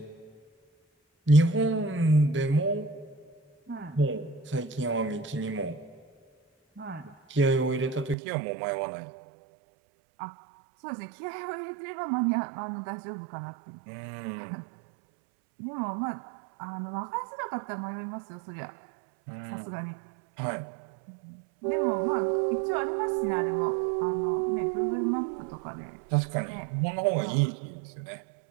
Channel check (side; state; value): left; drops out; at 8.2 s